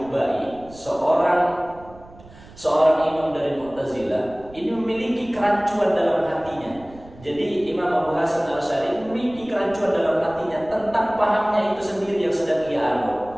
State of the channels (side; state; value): right; noise; rumble, 21 dB below the sound